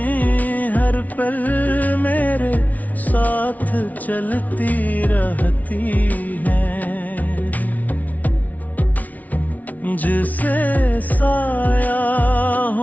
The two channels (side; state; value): right; late; 0.074 ms